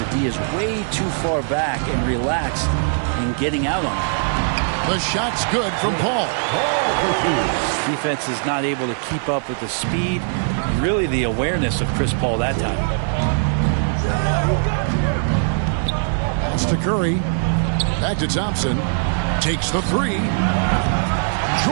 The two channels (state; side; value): silent; left; digital silence